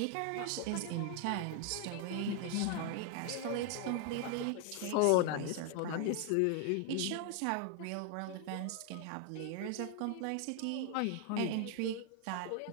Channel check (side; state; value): both; different; correlation 0.00